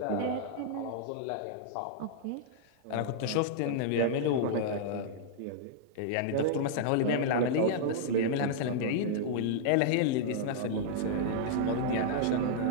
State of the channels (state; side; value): different; both; correlation -0.02